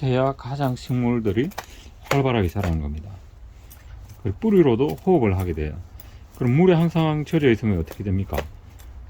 해야 가장 식물들이 활발하게 자라는 겁니다. 그리고 뿌리로도 호흡을 하게 돼요. 그럼 물에 항상 젖어 있으면 어떻게 됩니까?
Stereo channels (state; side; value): identical; both; correlation 1.00